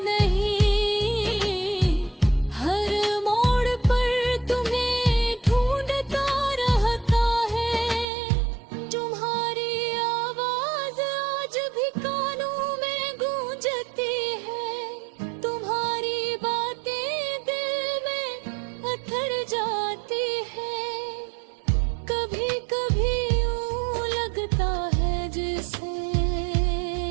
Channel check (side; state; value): left; drops out; at 8.1 s